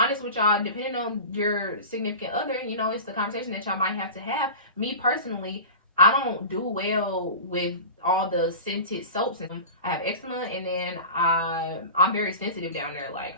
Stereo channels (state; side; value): inverted; both; correlation -0.33